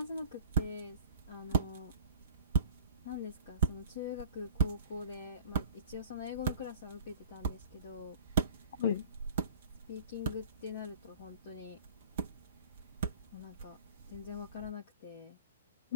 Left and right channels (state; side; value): inverted; both; correlation -0.44